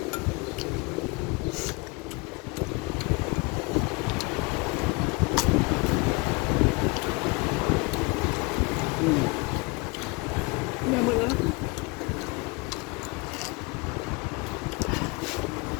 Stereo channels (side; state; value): right; quieter; 27.7 dB